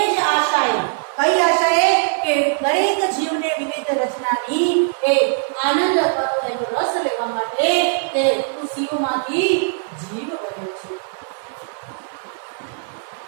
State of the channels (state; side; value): silent; left; 65 dB below the other